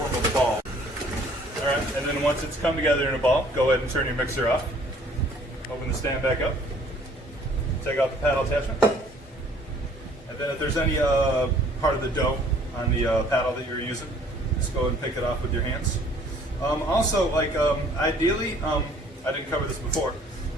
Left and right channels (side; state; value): both; normal; correlation 0.57